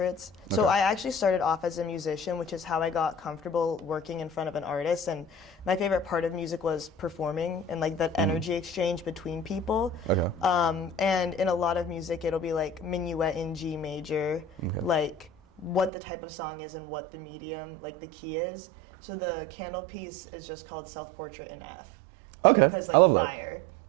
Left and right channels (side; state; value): left; drops out; at 15.9 s